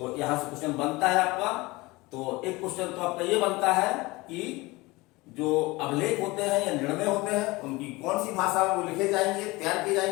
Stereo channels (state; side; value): quieter; right; 22.2 dB